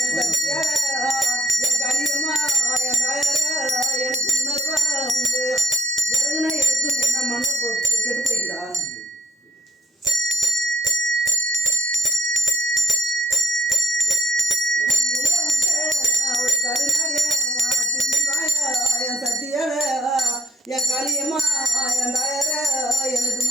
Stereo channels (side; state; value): both; normal; correlation 0.71